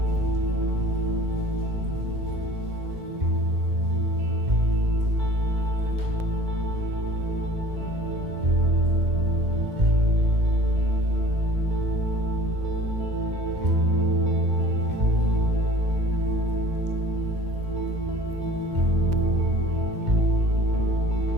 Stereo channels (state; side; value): late; left; 2.1 ms